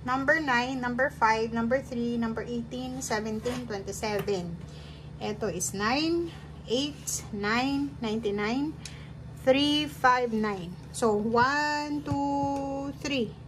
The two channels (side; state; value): both; identical; correlation 1.00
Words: Number 9, number 5, number 3, number 18, 17, 27. Ito is 9, 8, 9, 99, 3, 5, 9. So, 1, 2, 3.